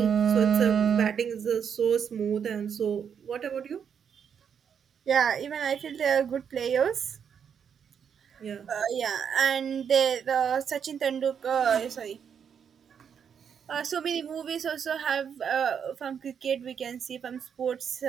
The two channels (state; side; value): quieter; left; 7.5 dB